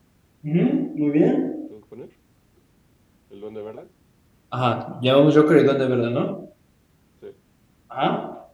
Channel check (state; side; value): identical; both; correlation 1.00